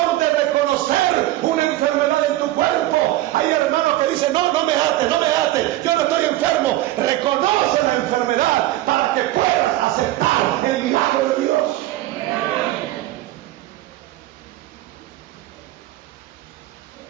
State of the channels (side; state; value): left; quieter; 16.0 dB